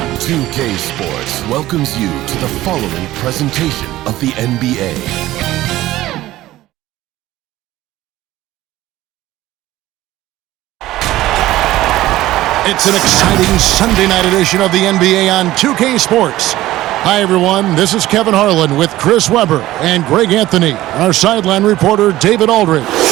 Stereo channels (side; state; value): left; quieter; 15.8 dB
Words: 2K Sports welcomes you to the following presentation of the NBA. It's an exciting Sunday night edition of the NBA on 2K Sports. Hi, everyone. This is Kevin Harlan with Chris Webber and Greg Anthony, our sideline reporter, David Aldridge.